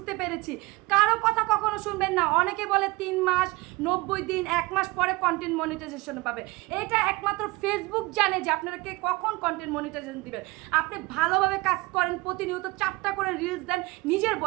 পেরেছি। কারো কথা কখনো শুনবেন না। অনেকে বলে 3 মাস, 90 দিন, 1 মাস পরে কন্টেন্ট মনিটাইজেশন পাবে। এটা একমাত্র ফেসবুক জানে যে আপনাকে কখন কন্টেন্ট মনিটাইজেশন দিবেন। আপনি ভালোভাবে কাজ করেন, প্রতিনিয়ত 4টা করে রিলস দেন নিজের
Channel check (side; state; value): left; quieter; 22.8 dB